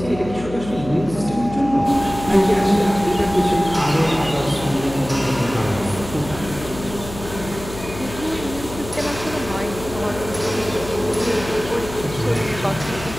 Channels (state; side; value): noise; left; hum, 12 dB below the sound